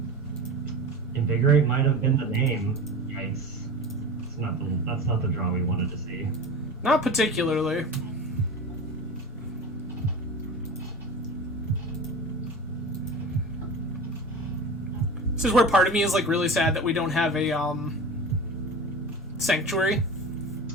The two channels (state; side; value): normal; both; correlation 0.32